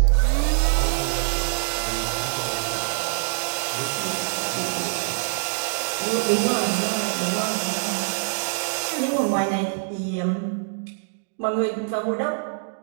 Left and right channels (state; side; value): silent; left; digital silence